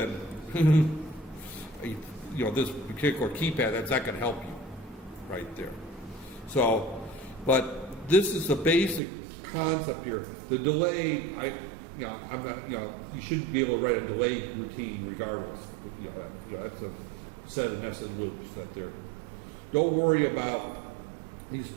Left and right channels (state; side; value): drops out; left; at 9.0 s